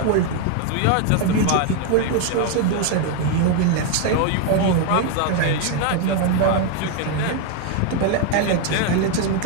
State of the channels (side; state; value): both; different; correlation 0.01